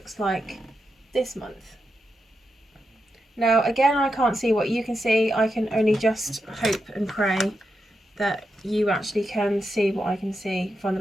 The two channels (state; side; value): normal; both; correlation 0.86